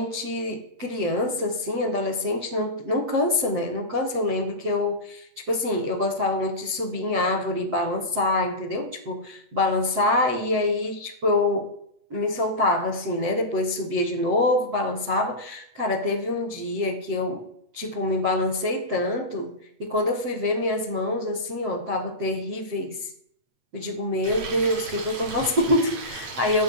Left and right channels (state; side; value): late; left; 8.3 ms